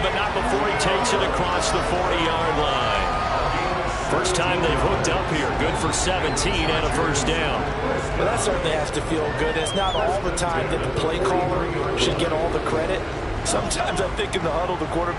not before he takes it across the 40-yard line. First time they've hooked up here. Good for 17 and a first down. Well, that certainly has to feel good. It's not all the time that the play caller should get all the credit. Sometimes I think in the huddle, the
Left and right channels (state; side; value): identical; both; correlation 1.00